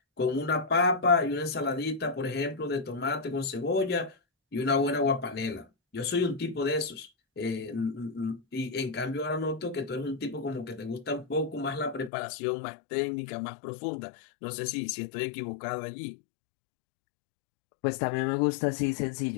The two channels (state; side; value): drops out; right; at 12.1 s